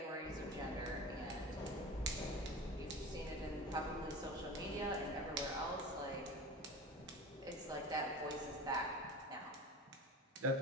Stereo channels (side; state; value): both; normal; correlation 0.33